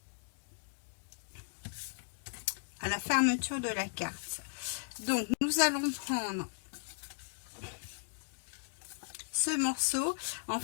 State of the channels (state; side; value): silent; right; digital silence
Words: à la fermeture de la carte. Donc, nous allons prendre ce morceau. En